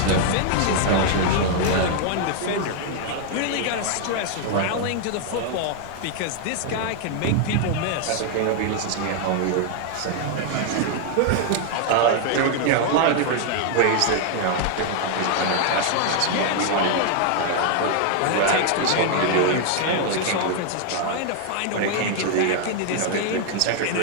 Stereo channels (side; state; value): both; different; correlation 0.00